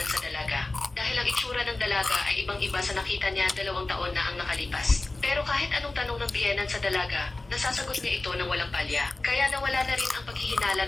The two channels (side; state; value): right; quieter; 3.1 dB